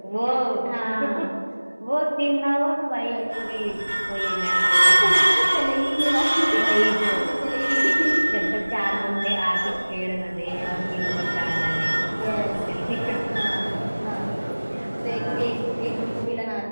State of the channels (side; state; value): both; inverted; correlation -1.00